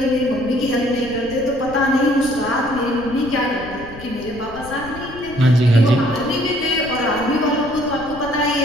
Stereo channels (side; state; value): left; noise; rumble, 16 dB below the sound